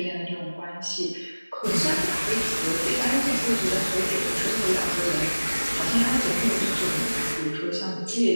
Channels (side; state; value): both; inverted; correlation -1.00